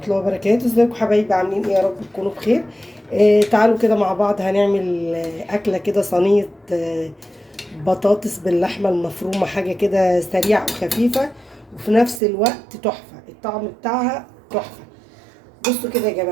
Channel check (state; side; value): drops out; left; at 12.2 s